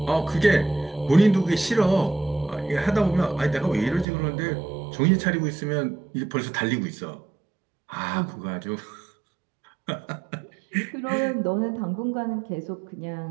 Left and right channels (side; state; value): left; drops out; at 4.0 s